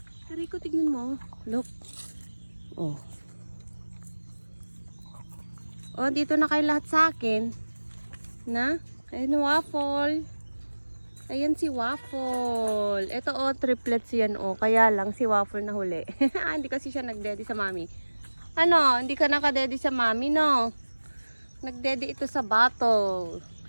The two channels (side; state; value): both; inverted; correlation -1.00